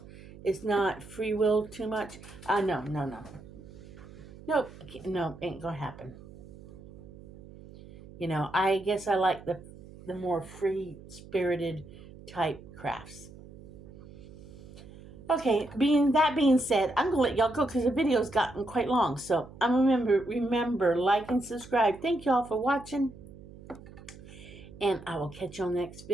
It's not free will too much. No, no, no. Nope. No, ain't gonna happen. I guess I like the more free spirited type crafts. Okay, being said, I'm gonna let y'all go because the video's gotten quite long. So remember, like and subscribe. Thank y'all for watching, and I will catch you on the next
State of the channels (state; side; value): noise; right; hum, 18 dB below the sound